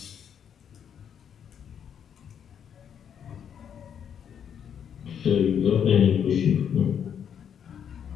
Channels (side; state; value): right; quieter; 8.3 dB